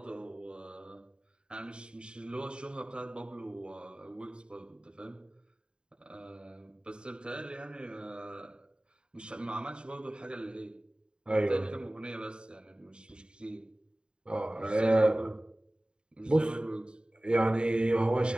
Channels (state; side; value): late; left; 0.050 ms